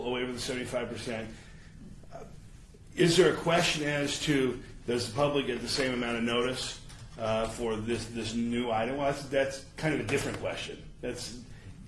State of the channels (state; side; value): identical; both; correlation 1.00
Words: a waiver of the 75%. Is there a question as to does the public get the same amount of notice for this new item? Well, that's kind of a different question.